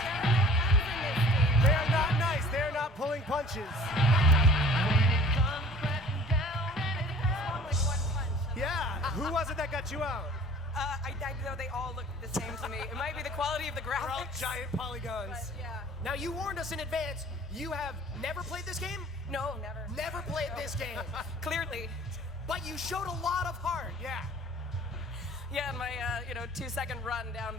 They are not nice. They are not pulling punches. Yeah. Who was it that got you out? I know they all look the same to me. It might be the quality of the They're all graphics. giant polygons. But yeah. Now, you warned us in advance. You have never played this game? No, never. Never played this game. Clearly. But you showed a lot of heart. Yeah. Yeah, in my 2-second run down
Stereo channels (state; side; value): normal; both; correlation 0.48